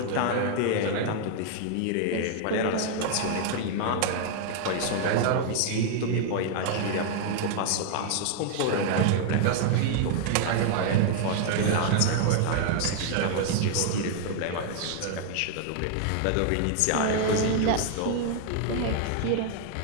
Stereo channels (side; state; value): both; different; correlation 0.00